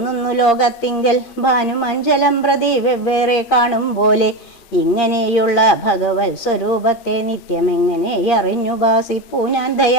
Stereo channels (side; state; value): right; late; 8.6 ms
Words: ലോകത്തിങ്കൽ ഭാനുമഞ്ജലം പ്രതി വെവ്വേറെ കാണും പോലെ. ഇങ്ങനെയുള്ള ഭഗവത് സ്വരൂപത്തെ നിത്യമെങ്ങനെ അറിഞ്ഞുപാസിപ്പൂ ഞാൻ